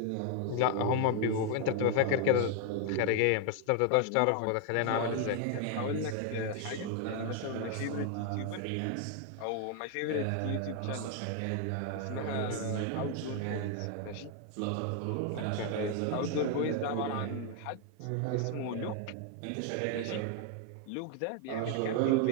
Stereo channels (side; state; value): both; different; correlation 0.00